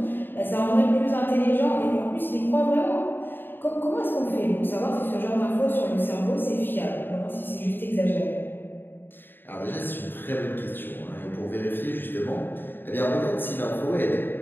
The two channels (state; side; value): late; right; 0.096 ms